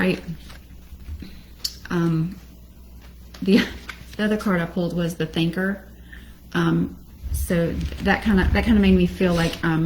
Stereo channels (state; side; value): identical; both; correlation 1.00